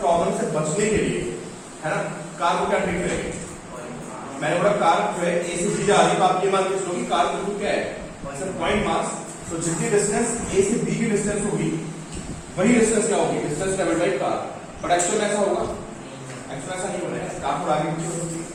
से बचने के लिए, है ना, कार को क्या ट्रीट करेंगे। मैंने बोला कार जो है ए से बी जा रही है, तो आप ये मान के चलो कि कार बिल्कुल क्या है, पॉइंट मास। तो जितनी डिस्टेंस ए से बी की डिस्टेंस होगी वही डिस्टेंस क्या होगी, distance travelled by car. But actual में ऐसा होगा, एक्चुअल ऐसा नहीं होना है, कार थोड़ा आगे पीछे हो सकती है,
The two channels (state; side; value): identical; both; correlation 1.00